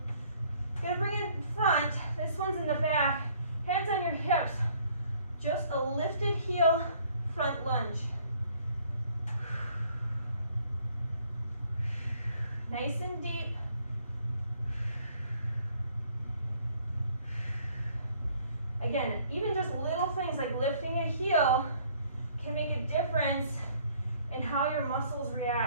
I'm gonna bring it in front, this one's in the back, hands on your hips. Just a lifted heel, front lunge. Nice and deep. Again, even just little things like lifting a heel can make a difference in how your muscles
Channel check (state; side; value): inverted; both; correlation -0.60